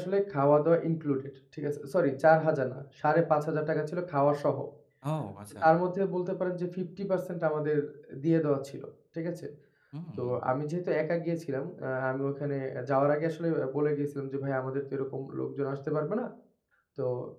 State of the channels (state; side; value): identical; both; correlation 1.00